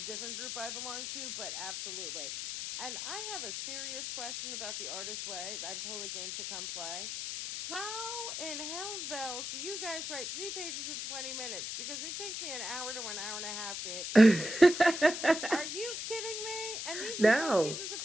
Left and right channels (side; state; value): left; noise; hiss, 5 dB below the sound